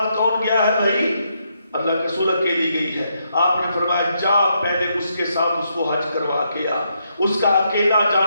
کون گیا ہے بھائی؟ اللہ کے رسول اکیلی گئی ہے۔ آپ نے فرمایا جا پہلے اس کے ساتھ اس کو حج کروا کے آ، اس کا اکیلا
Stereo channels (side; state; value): both; inverted; correlation -0.78